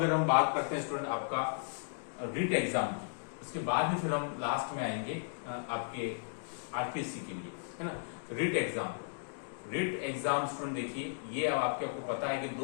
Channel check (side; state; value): right; silent; digital silence